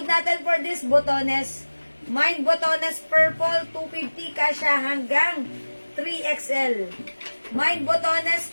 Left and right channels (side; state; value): both; inverted; correlation -1.00